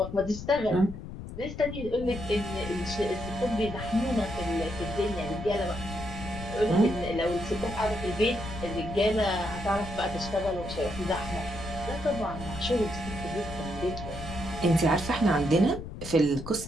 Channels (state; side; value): noise; left; rumble, 10 dB below the sound